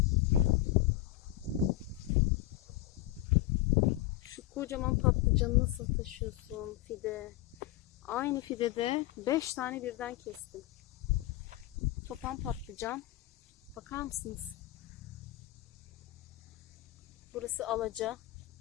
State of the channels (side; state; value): right; quieter; 15.5 dB